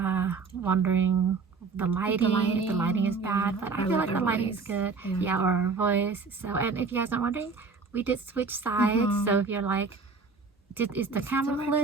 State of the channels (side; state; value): left; quieter; 4.6 dB